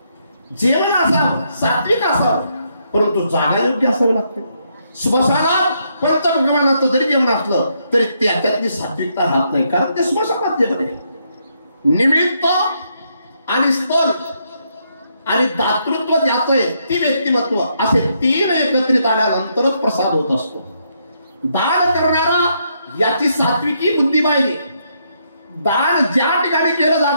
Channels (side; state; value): both; inverted; correlation -0.76